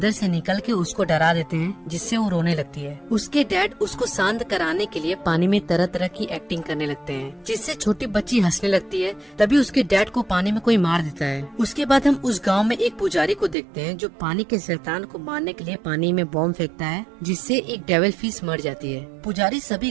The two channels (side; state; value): left; drops out; at 13.6 s